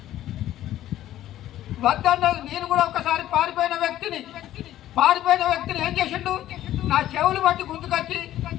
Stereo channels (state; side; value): quieter; right; 13.3 dB